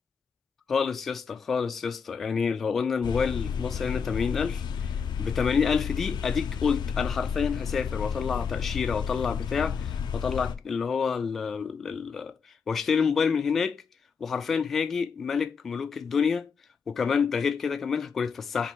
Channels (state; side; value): quieter; right; 5.9 dB